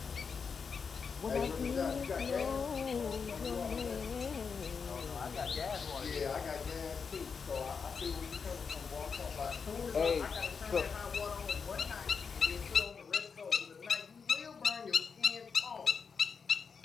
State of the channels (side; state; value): right; quieter; 5.7 dB